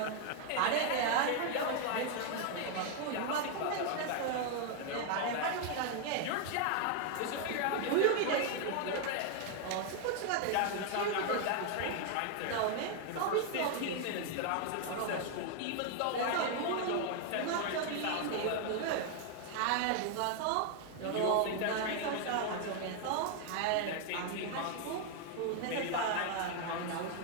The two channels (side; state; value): both; different; correlation 0.00